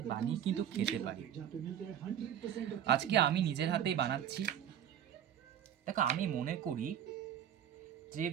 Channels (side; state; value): left; quieter; 9.8 dB